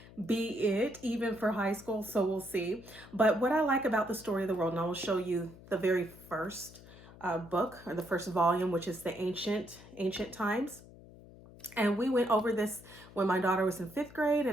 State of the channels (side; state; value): left; noise; hum, 20 dB below the sound